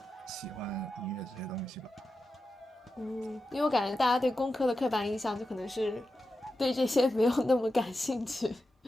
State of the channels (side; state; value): both; normal; correlation 0.90